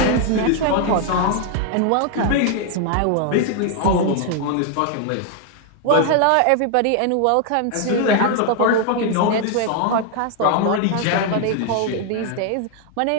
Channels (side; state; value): both; different; correlation 0.00